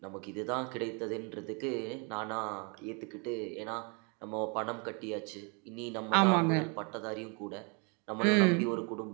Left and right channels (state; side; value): quieter; left; 34.2 dB